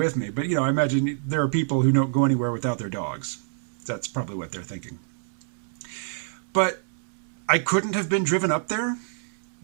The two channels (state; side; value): silent; left; 61 dB below the other